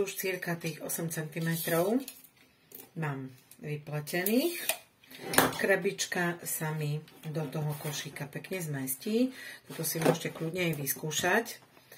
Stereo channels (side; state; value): both; identical; correlation 1.00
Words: cirka tých 8 cm mám vypletených. Krabička sa mi do toho košíka pekne zmestí. Toto si môžete kľudne aj vyskúšať.